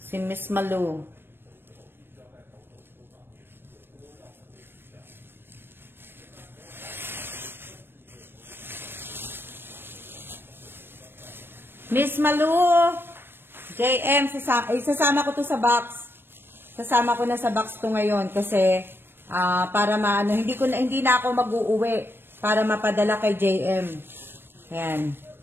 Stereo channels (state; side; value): late; left; 0.10 ms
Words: si Miss Malu. Malu. JM, sasama ko to sa box. Sasama ko na sa box to ngayon kasi para maano, hindi na ako mag-uuwi para mapadala kay JM. Ayan.